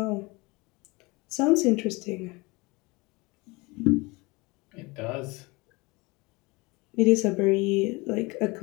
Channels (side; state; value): right; quieter; 25.0 dB